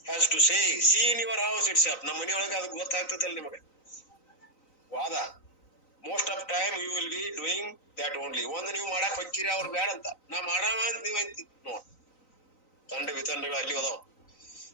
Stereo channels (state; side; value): late; right; 3.9 ms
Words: has to say see in your house it's up. ನಮ್ಮ ಮನೆಯೊಳಗ ಅದು ಗೊತ್ತಾಗ್ತದಲ್ಲ ನಿಮಗೆ. ವಾದ most of time you will be doing that only. ಒಂದು ನೀವು ಮಾಡಕ್ ಹೋಗ್ತೀರಿ, ಅವ್ರು ಬ್ಯಾಡ ಅಂತ. ನಾ ಮಾಡಾಮ ಅಂತ ನೀವ್ ಅಂತಿ ನೋಡ್. ತಂಡ ವಿತಂಡಗಳು ಅಲ್ಲಿ ಹೋದಾವ್.